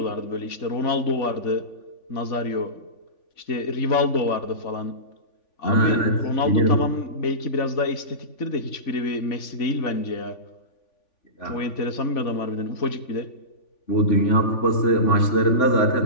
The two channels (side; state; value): right; late; 3.5 ms